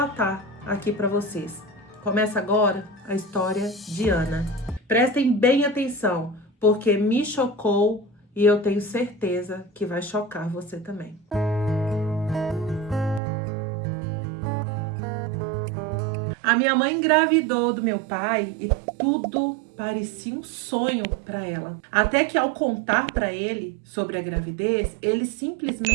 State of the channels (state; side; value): drops out; left; at 13.2 s